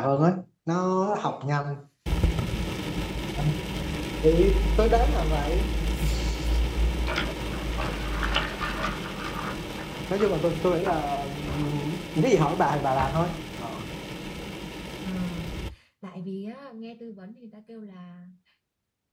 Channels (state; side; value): identical; both; correlation 1.00